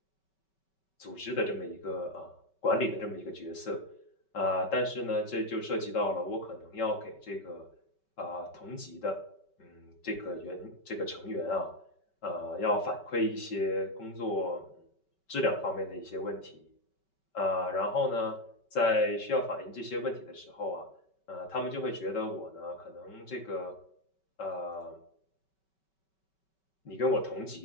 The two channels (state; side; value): late; right; 5.2 ms